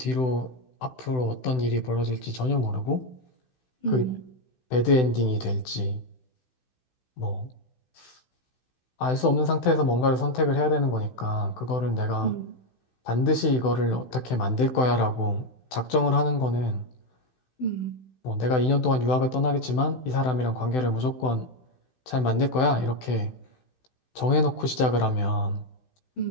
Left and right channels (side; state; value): right; late; 16 ms